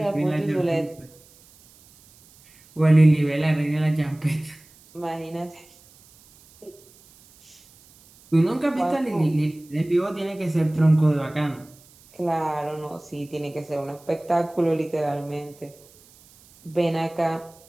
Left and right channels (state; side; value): noise; right; hiss, 27 dB below the sound